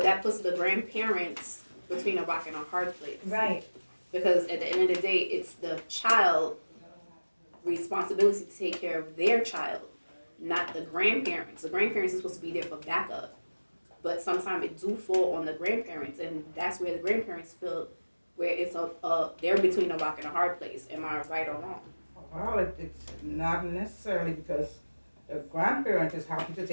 that puts the grandparents between a rock and a hard place. Right. Because at the end of the day, it's the child responsibility to take care of their child, not the grandparents. The grandparents are supposed to be there for backup. But sometimes it do fall on the grandparents, and that's where the grandparents feel where it's they're between a rock and a hard place. Am I right or wrong? Well, it's not necessarily because the grandparent is happy to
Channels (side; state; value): both; inverted; correlation -1.00